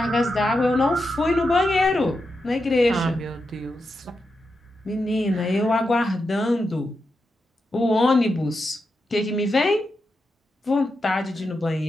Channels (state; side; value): normal; both; correlation 0.87